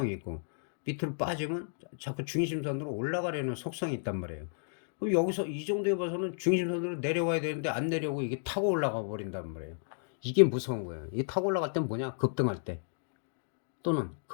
있고 밑으로 빠지면 자꾸 중심선으로 올라가려는 속성이 있단 말이에요. 그럼 여기서 이 정도에 봐서는 중심선으로 내려와야 되는데 안 내려오고 이게 타고 올라가 버린단 말이에요. 이게 무서운 거예요. 이게 타고 올라갈 땐 뭐냐? 급등할 때 또는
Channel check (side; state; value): right; silent; digital silence